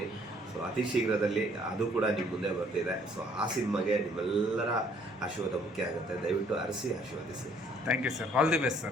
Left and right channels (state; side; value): normal; both; correlation 0.62